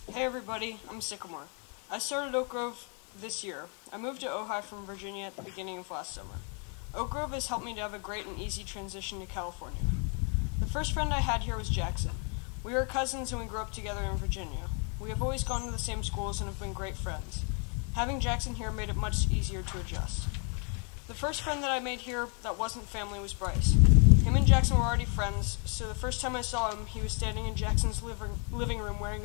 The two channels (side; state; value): right; quieter; 38.3 dB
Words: Hey everybody, I'm Sycamore. I started Oak Grove this year. I moved to Ojai from Virginia at the beginning of last summer. Oak Grove has helped me to have a great and easy transition to California. The first friend I had here was Jackson. We were cousins and we grew up together in Virginia. We have always gone to the same schools and have been great friends. Having Jackson here made it much easier to adjust. The first friend that I made here that wasn't family was Bryce. Him and Jackson were already friends, so the first time I saw him, he was standing in Jackson's living room wearing